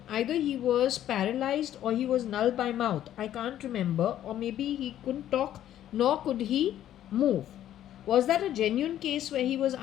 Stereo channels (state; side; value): quieter; right; 11.8 dB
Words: either he was paralyzed or he was null by mouth. I can't remember. Or maybe he couldn't talk, nor could he move. Was that a genuine case where he was